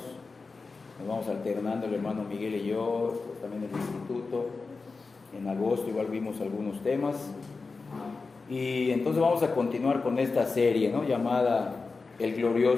Nos vamos alternando el hermano Miguel y yo, pues también el instituto. En agosto igual vimos algunos temas. Y entonces vamos a continuar con esta serie, ¿no?, llamada El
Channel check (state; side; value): quieter; right; 4.2 dB